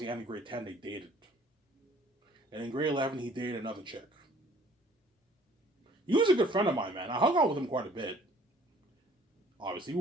end of grade 10, they dated. And in grade 11, he dated another chick. He was a good friend of mine, man. I hung out with him quite a bit. Obviously,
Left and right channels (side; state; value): both; normal; correlation 0.55